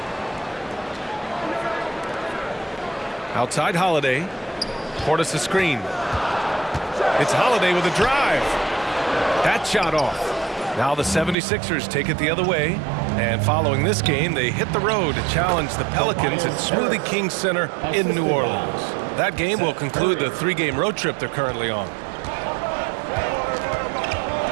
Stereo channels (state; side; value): drops out; left; at 11.4 s